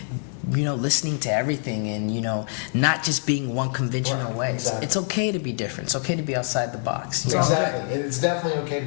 listening to everything, and not just being one conventional way. Exactly. It's okay to be different. It's okay to be outside the box. Exactly. It's definitely okay to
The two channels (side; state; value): right; silent; 55 dB below the other